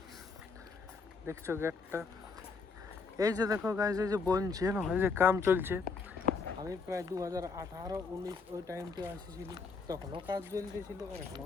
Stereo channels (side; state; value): right; quieter; 4.7 dB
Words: দেখছো গেটটা, এই যে দেখো গাইস, এই যে বনছে না, এই যে কাম চলছে। আমি প্রায় 2018-19 ওই টাইমটা আসেছিলি, তখনও কাজ চলতেছিল আর এখনও